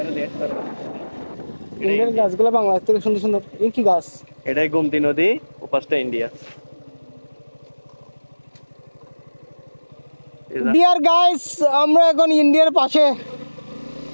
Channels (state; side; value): inverted; both; correlation -1.00